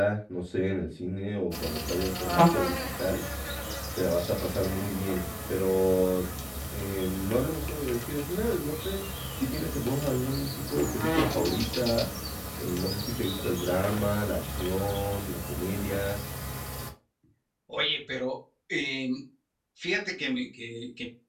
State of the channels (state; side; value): identical; both; correlation 1.00